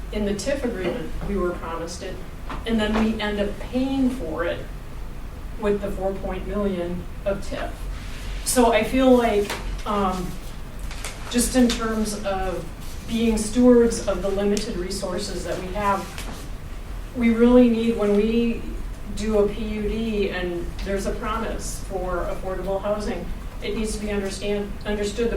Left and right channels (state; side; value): identical; both; correlation 1.00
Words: In the TIF agreement, we were promised it, and then we end up paying for it with the 4 million of TIF. So I feel like, just in terms of being stewards of the limited resources that we have, we really need, when we do a PUD and there's a promise for affordable housing, it needs to be understood